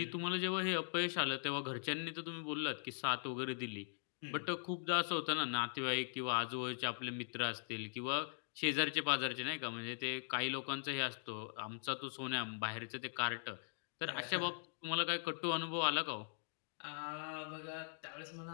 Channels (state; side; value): silent; right; digital silence